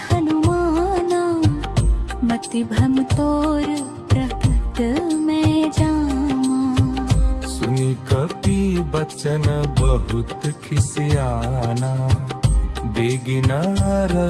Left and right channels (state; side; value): identical; both; correlation 1.00